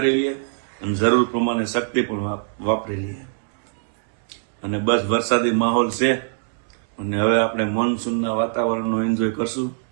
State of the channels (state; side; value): silent; left; 64 dB below the other